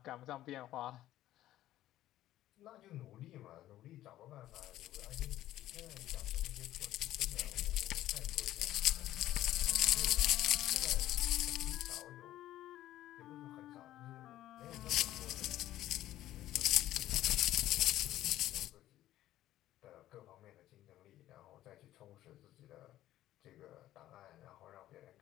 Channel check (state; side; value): quieter; right; 13.9 dB